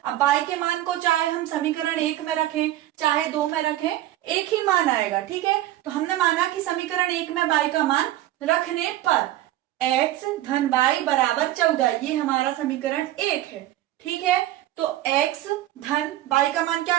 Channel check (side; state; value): left; quieter; 14.5 dB